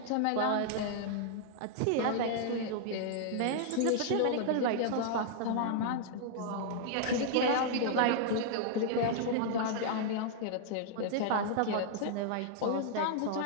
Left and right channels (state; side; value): different; both; correlation -0.01